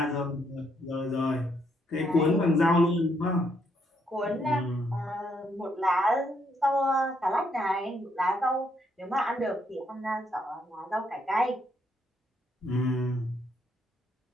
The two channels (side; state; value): both; normal; correlation 0.74